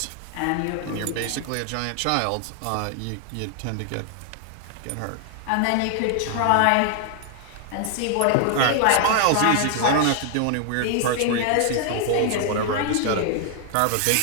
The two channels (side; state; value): both; different; correlation 0.00